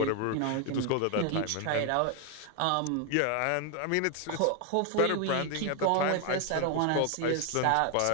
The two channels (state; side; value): different; both; correlation 0.01